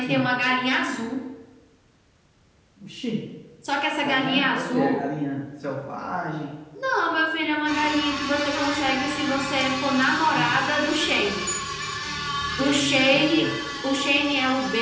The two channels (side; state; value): both; identical; correlation 1.00